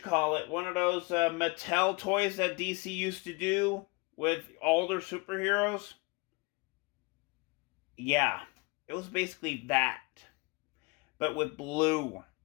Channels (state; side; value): quieter; right; 28.0 dB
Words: those Mattel toys that DC used to do with all their superheroes. Yeah, it was basically that, but with blue.